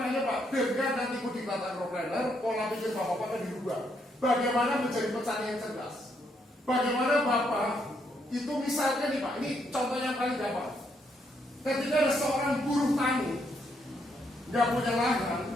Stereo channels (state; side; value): normal; both; correlation 0.75